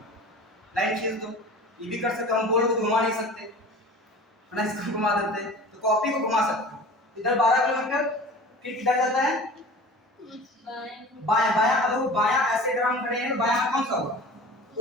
लाइन खींच दो, ये भी कर सकते हो। हम बोर्ड को घुमा नहीं सकते ना, इसको घुमा देते, तो कॉपी को घुमा सकते हो। इधर 12 किलोमीटर, फिर किधर जाता है? बायां। बायां, अब वो बायां ऐसे अगर हम खड़े हैं, बायां कौन सा होगा?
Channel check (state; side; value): normal; both; correlation 0.39